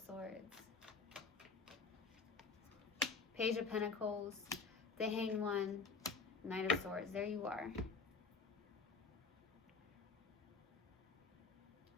Page of Pentacles, the Hanged One, Knight of Swords. There you are.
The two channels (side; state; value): right; quieter; 4.6 dB